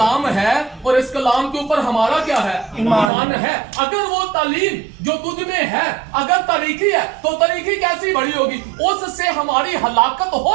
ہے، اور اس کلام کے اوپر ہمارا کیا ہے؟ ایمان ہے۔ اگر وہ تعلیم جو تجھ میں ہے اگر طریقی ہے تو طریقی کیسی بڑی ہوگی؟ اس سے ہماری ہلاکت ہو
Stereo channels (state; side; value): drops out; left; at 3.1 s